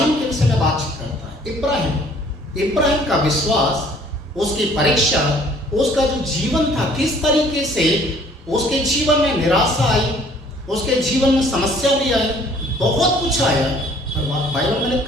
के विषय में बातचीत करता है। इब्राहिम का विश्वास, उसकी परीक्षा, उसका जो जीवन था, किस तरीके से उसके जीवन में निराशा आई, उसके जीवन में समस्या भी आई, बहुत कुछ आया, पर बाइबल में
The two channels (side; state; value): both; normal; correlation 0.56